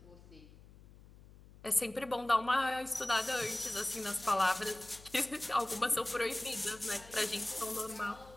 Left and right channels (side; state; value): left; noise; hum, 21 dB below the sound